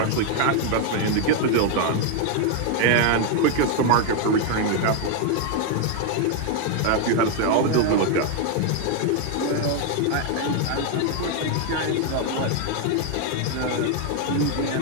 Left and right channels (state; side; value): different; both; correlation 0.00